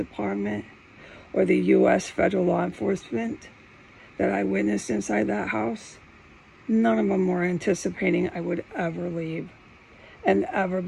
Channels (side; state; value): both; identical; correlation 1.00